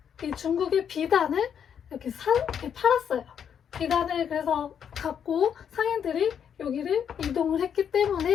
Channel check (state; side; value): quieter; right; 8.1 dB